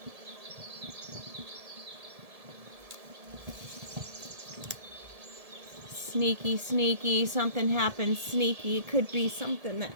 Sneaky, sneaky, something happens sneaky. It could be something that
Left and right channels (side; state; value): left; late; 1.7 ms